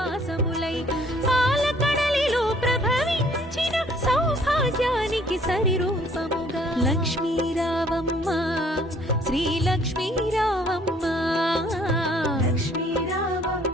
పాలకడలిలో ప్రభవించిన సౌభాగ్యానికి సరిరూపముగా లక్ష్మీ రావమ్మ శ్రీ లక్ష్మీ రావమ్మ లక్ష్మీ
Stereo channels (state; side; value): normal; both; correlation 0.60